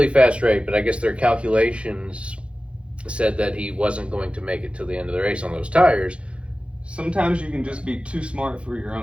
fast rate, but I guess their calculations said that he wasn't going to make it to the end of the race on those tires. Sometimes you can just be too smart for your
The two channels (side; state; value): left; late; 0.060 ms